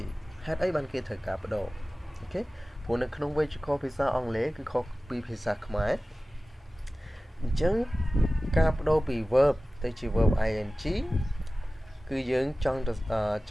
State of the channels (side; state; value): both; normal; correlation 0.96